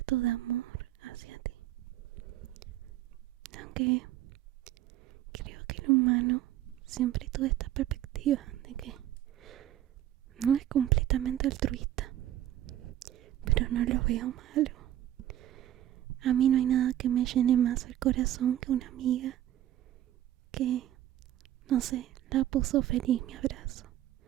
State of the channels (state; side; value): quieter; left; 12.5 dB